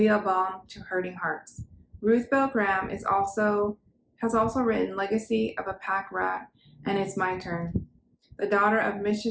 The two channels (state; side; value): identical; both; correlation 1.00